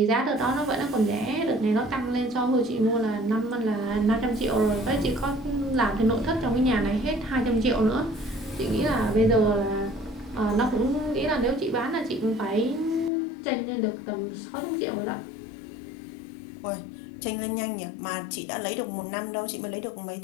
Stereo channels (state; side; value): drops out; right; at 13.1 s